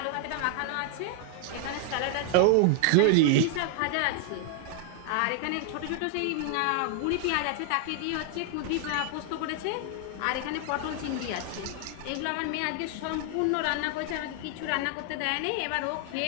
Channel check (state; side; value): different; both; correlation 0.00